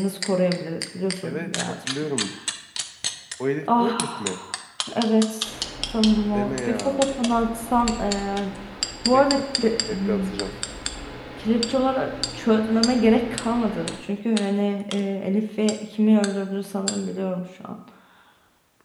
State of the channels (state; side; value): identical; both; correlation 1.00